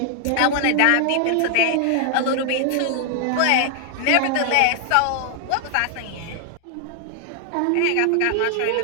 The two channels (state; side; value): different; both; correlation 0.00